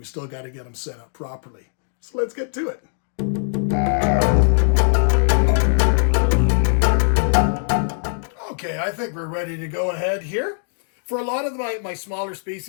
still got to get them set up properly. So let's get to it. Okay, I think we're ready to go ahead here. For a lot of my smaller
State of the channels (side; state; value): right; silent; digital silence